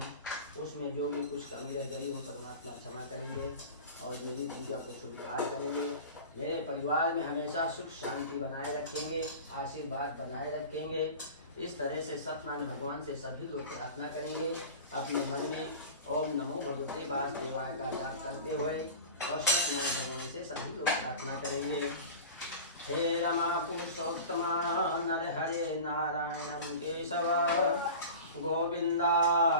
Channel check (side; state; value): both; inverted; correlation -0.35